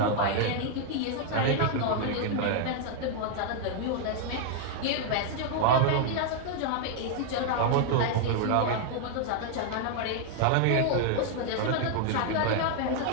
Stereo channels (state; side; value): different; both; correlation 0.00